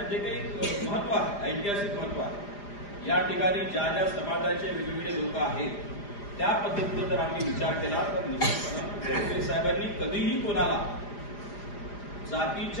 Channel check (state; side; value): late; right; 4.9 ms